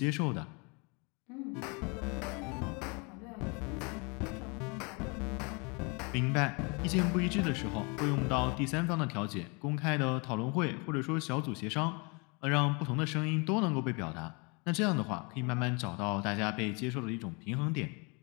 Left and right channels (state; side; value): quieter; right; 31.1 dB